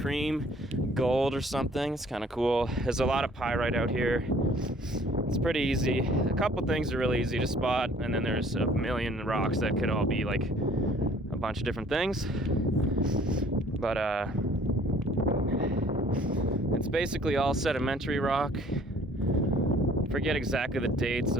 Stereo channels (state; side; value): normal; both; correlation 0.56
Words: cream, gold or something. It's kind of cool. There's a lot of pyrite out here. It's pretty easy. A couple things are really easy to spot, and then there's a million rocks that could all be like a bunch of different things. But it's basically all sedimentary rock. Forget exactly the dates